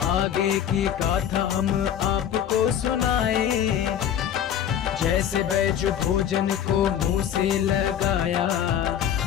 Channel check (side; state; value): right; quieter; 9.6 dB